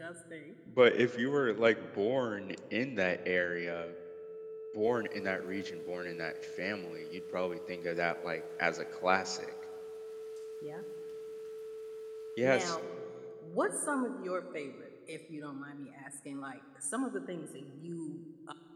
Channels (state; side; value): identical; both; correlation 1.00